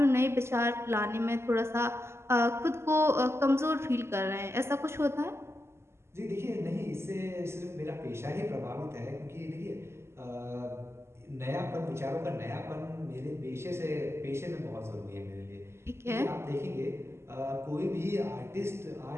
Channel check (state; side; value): late; left; 0.12 ms